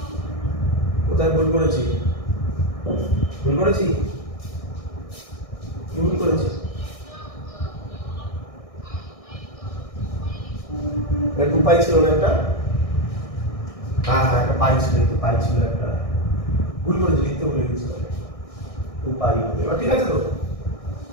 কোথায় ভুল করেছি? ভুল করেছি? কি ভুল করেছি? টু পাই ছিল না একটা? হ্যাঁ হ্যাঁ একটা পাই ছিল, একটু পাই ছিল একটা, ভুল করেছি, লিখতে ভুলে গেছি। টু পাই হবে, এবার ঠিক আছে তো?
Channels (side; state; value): right; late; 1.6 ms